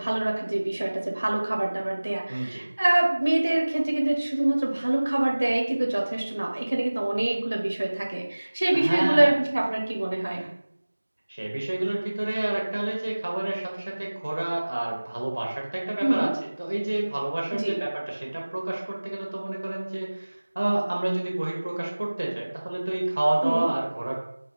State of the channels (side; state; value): both; inverted; correlation -1.00